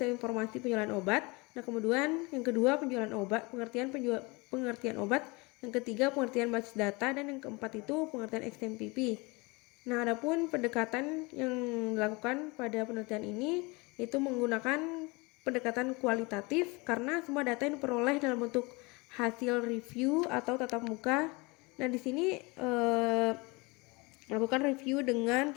informasi penjualan obat. Nah, kemudian yang kedua penjualan obat, pengertian obat. Yang ketiga pengertian basis data, dan yang keempat itu pengertian XMPP. Nah, adapun pendekatan yang dilakukan pada penelitian ini itu menggunakan pendekatan kualitatif karena semua data yang diperoleh dalam bentuk hasil review atau tatap muka. Nah, di sini melakukan review dengan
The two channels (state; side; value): quieter; right; 26.3 dB